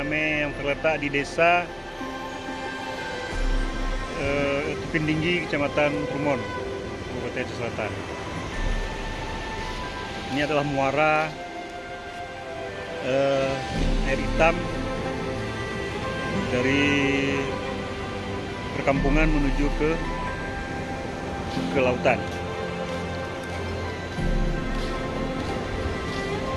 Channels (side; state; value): both; identical; correlation 1.00